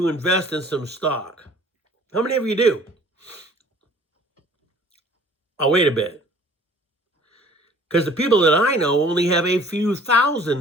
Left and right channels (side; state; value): both; normal; correlation 0.52